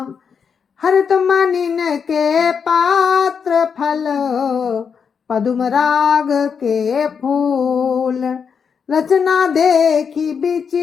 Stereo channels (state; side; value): quieter; right; 6.5 dB